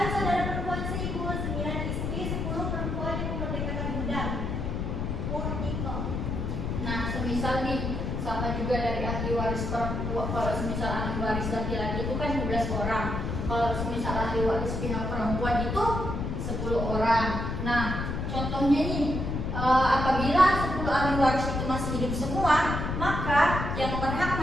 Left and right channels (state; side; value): noise; left; rumble, 2 dB below the sound